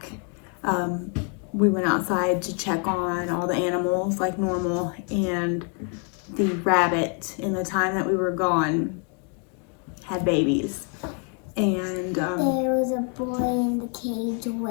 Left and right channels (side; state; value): right; quieter; 40.0 dB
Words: we went outside to check on all the animals like normal, and the rabbit in the time that we were gone had babies. And there was a boy in the cage